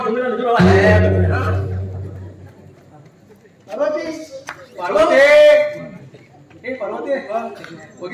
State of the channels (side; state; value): both; identical; correlation 1.00